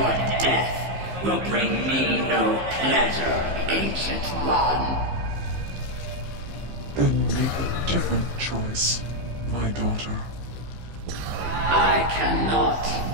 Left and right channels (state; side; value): late; left; 15 ms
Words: death will bring me no pleasure, Ancient One. Then make a different choice, my daughter. I cannot.